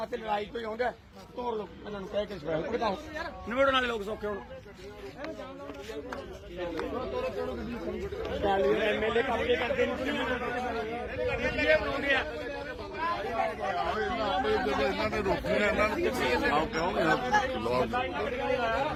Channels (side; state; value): both; identical; correlation 1.00